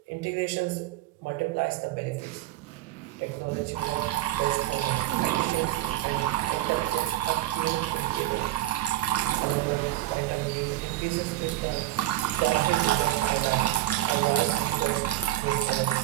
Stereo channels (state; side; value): quieter; left; 15.2 dB